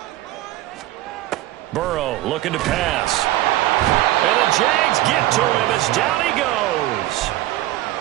Burrow looking to pass. And the Jags get to him as down he goes.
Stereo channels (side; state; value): left; quieter; 15.7 dB